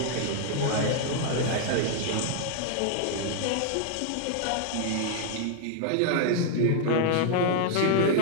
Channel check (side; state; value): both; different; correlation 0.00